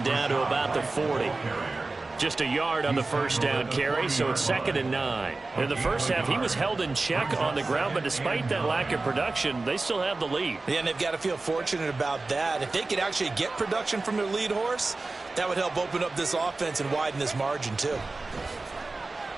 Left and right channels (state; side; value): quieter; left; 3.4 dB